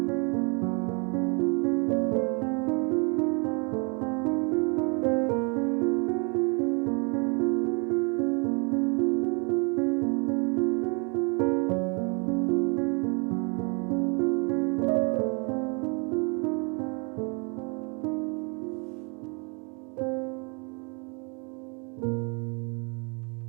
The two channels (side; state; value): left; quieter; 34.2 dB